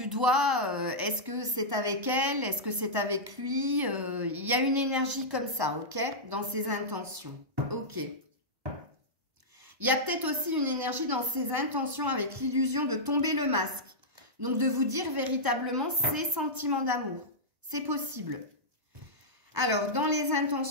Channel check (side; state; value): left; late; 1.0 ms